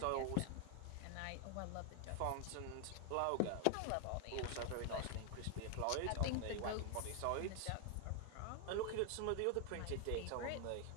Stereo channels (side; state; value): both; different; correlation 0.00